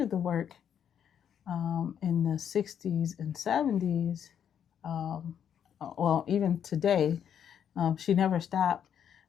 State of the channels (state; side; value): quieter; right; 8.7 dB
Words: the work in the 60s and 70s. Um, well, even today, she never stopped.